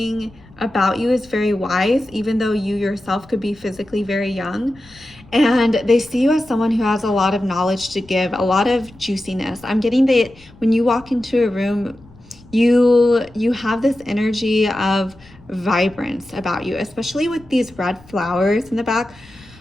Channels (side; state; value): left; noise; rumble, 25 dB below the sound